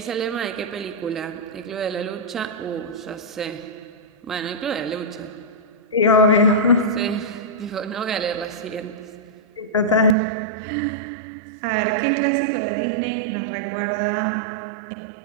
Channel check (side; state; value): left; drops out; at 10.2 s